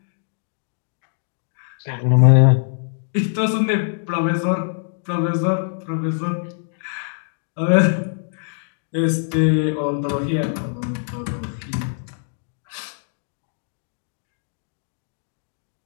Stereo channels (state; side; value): silent; right; digital silence